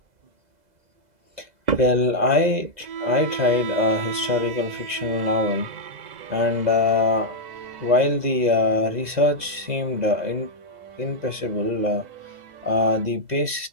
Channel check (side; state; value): left; late; 2.0 ms